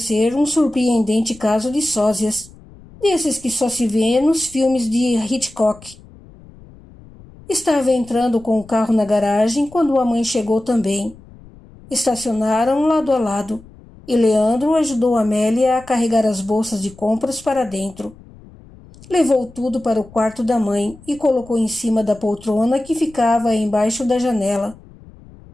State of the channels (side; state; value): left; noise; rumble, 22 dB below the sound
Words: um surpreendente caso de sósias, desses que só se vê nos filmes de Hitchcock. Estava entrando com o carro na garagem quando a mãe chegou também. Estacionaram lado a lado, e Leandro ajudou Amélia a carregar as bolsas de compras para dentro. Levou tudo para o quarto da mãe e colocou em cima da poltrona que ficava embaixo da janela.